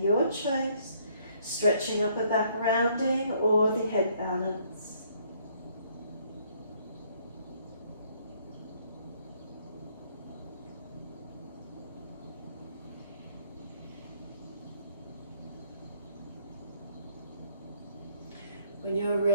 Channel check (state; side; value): inverted; both; correlation -0.66